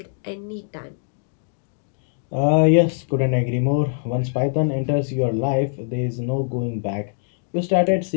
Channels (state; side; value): silent; right; digital silence